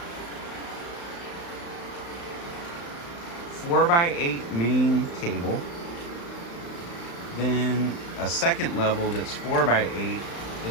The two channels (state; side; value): late; right; 35 ms